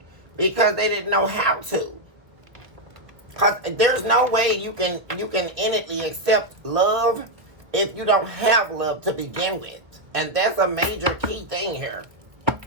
because they didn't know how to. Because there's no way you can innately accept love if you don't have love to begin with. And that's a major key thing here.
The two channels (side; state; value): left; late; 1.3 ms